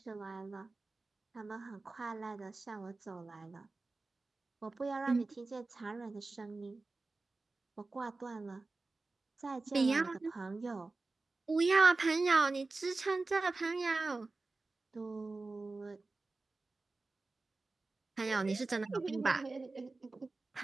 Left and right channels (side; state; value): left; quieter; 3.5 dB